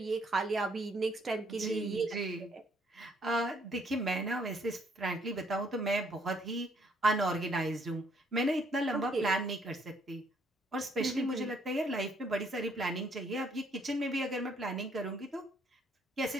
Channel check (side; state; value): both; normal; correlation 0.67